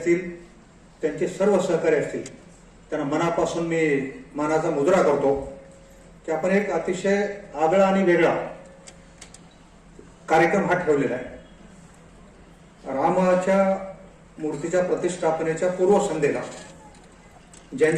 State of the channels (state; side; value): identical; both; correlation 1.00